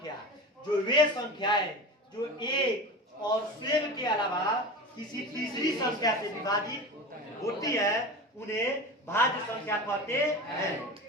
जो वे संख्याएं जो एक और स्वयं के अलावा किसी तीसरी संख्या से विभाजित होती है उन्हें भाज्य संख्या कहते हैं।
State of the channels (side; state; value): both; normal; correlation 0.29